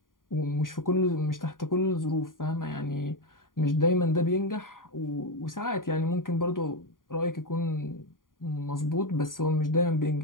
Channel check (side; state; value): right; late; 0.90 ms